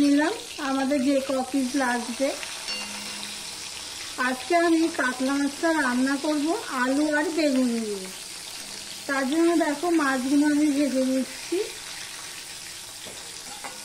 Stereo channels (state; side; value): identical; both; correlation 1.00